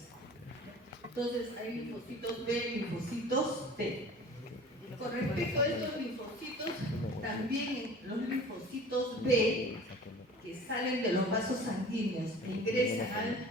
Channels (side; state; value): both; normal; correlation 0.43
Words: Entonces hay linfocitos B, linfocitos T. Con respecto a estos linfocitos, también los linfocitos B, que salen de los vasos sanguíneos e ingresan al